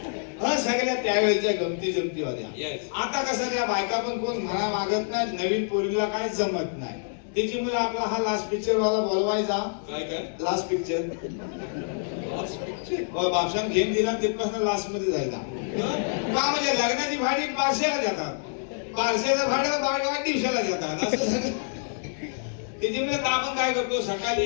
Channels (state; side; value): silent; right; digital silence